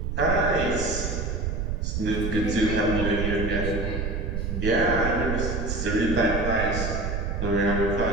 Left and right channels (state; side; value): noise; right; rumble, 2 dB below the sound